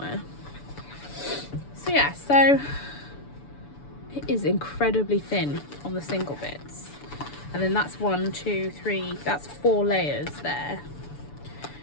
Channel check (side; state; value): right; late; 6.9 ms